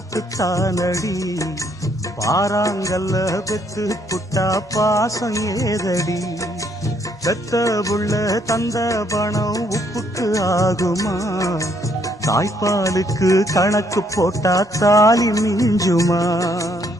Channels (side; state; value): both; normal; correlation 0.69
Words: பாறாங்கல்ல பெத்து புட்டா பாசம் ஏதடி, பெத்த புள்ள தந்த பணம் உப்புக்கு ஆகுமா, தாய்ப்பாலுக்கு கணக்கு போட்டா தாலி மிஞ்சுமா,